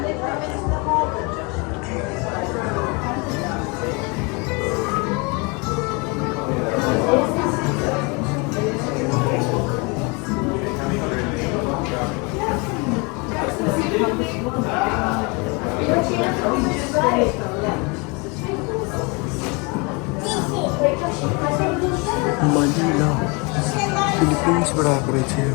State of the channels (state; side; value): quieter; right; 29.9 dB